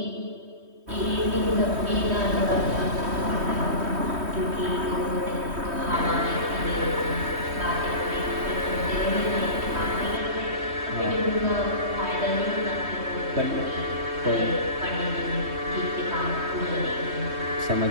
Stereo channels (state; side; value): late; left; 3.2 ms